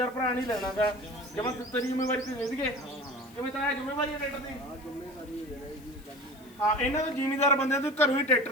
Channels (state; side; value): noise; left; hiss, 25 dB below the sound